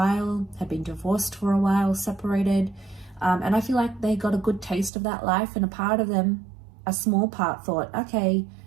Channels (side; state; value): left; drops out; at 4.9 s